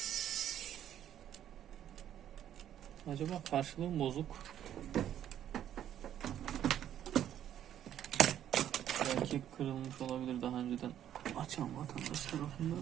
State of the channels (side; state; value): left; quieter; 10.7 dB